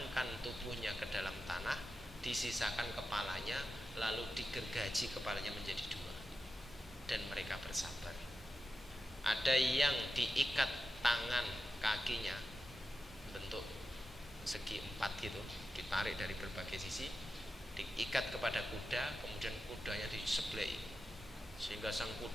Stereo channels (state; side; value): normal; both; correlation 0.91